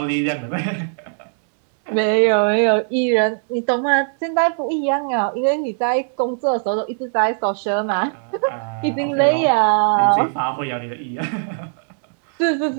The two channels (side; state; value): left; silent; digital silence